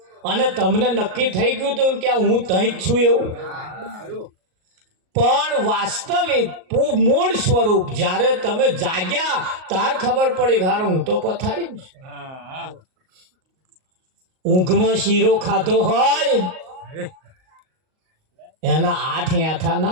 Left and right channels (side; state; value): left; late; 38 ms